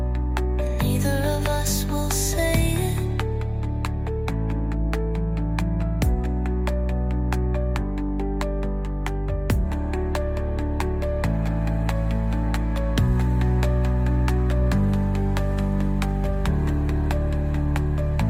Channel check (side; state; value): both; identical; correlation 1.00